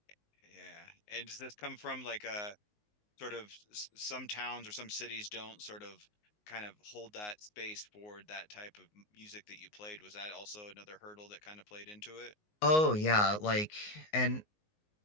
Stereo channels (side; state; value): right; late; 19 ms